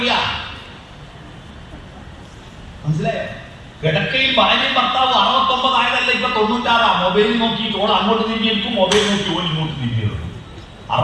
മനസ്സിലായോ? കിടക്കയിൽ ഭാര്യയും ഭർത്താവ് 69 ആയതല്ല, ഇപ്പൊ 96. മൊബൈൽ നോക്കി ഓൾ അങ്ങോട്ട് നീങ്ങിയിരിക്കും, മൊബൈൽ നോക്കി ഓൾ ഇങ്ങോട്ട് നീങ്ങിയിരിക്കും.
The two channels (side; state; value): both; identical; correlation 1.00